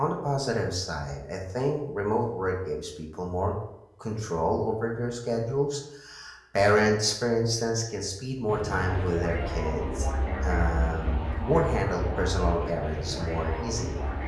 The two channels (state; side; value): identical; both; correlation 1.00